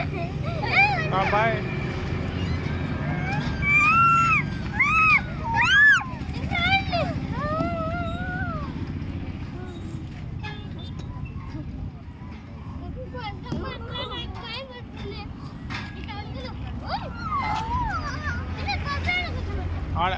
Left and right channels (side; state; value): both; identical; correlation 1.00